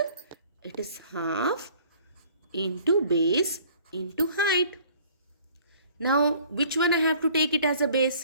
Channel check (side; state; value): both; inverted; correlation -0.54